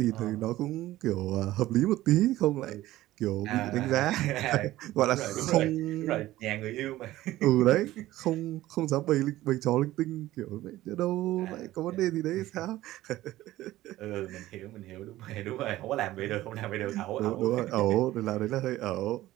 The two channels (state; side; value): quieter; left; 15.8 dB